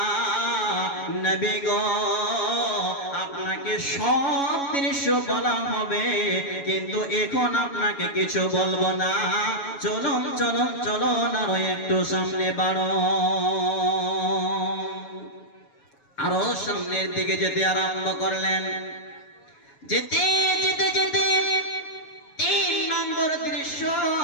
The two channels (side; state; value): right; late; 7.2 ms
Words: নবী গো, আপনাকে সব দৃশ্য বলা হবে, কিন্তু এখন আপনাকে কিছু বলবো না। চলুন চলুন চলুন, আরো একটু সামনে বাড়ো। আরো সামনের দিকে যেতে আরম্ভ করলেন। যেতে যেতে যেতে 3 নম্বর দৃশ্য